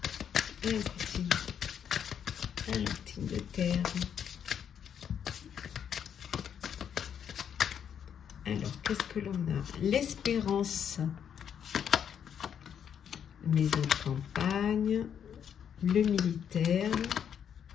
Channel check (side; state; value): right; quieter; 8.4 dB